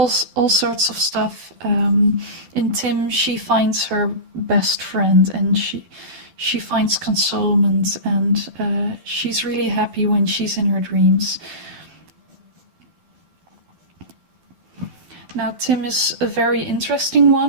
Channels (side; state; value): left; late; 12 ms